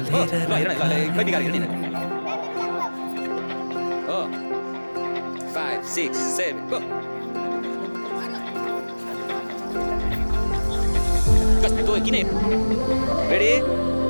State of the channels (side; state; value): both; inverted; correlation -1.00